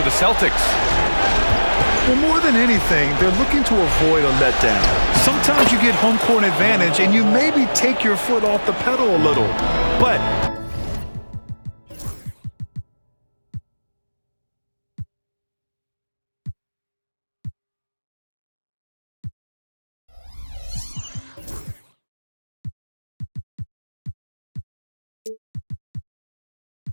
the Celtics. Well, more than anything, they're looking to avoid a letdown. Sometimes you get home court advantage and you maybe take your foot off the pedal a little. But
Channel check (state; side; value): inverted; both; correlation -1.00